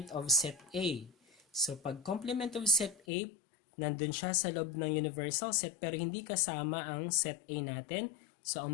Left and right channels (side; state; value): right; drops out; at 3.0 s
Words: of set A. So, pag complement of set A, nandun siya sa loob ng universal set pero hindi kasama ang set A natin. So,